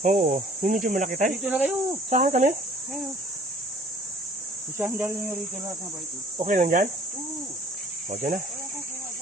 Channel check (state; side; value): normal; both; correlation 0.51